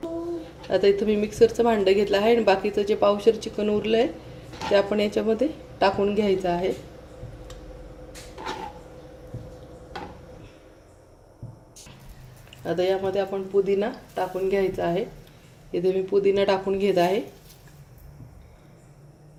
आता इथं मी मिक्सरचं भांडं घेतलं आहे आणि बाकीचं जे पावशर चिकन उरलं आहे ते आपण याच्यामध्ये टाकून घ्यायचं आहे. आता यामध्ये आपण पुदिना टाकून घ्यायचा आहे. इथे मी पुदिना टाकून घेत आहे.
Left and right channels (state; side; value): identical; both; correlation 1.00